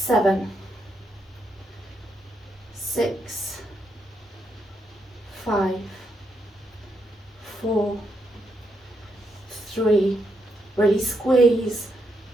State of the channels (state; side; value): normal; both; correlation 0.80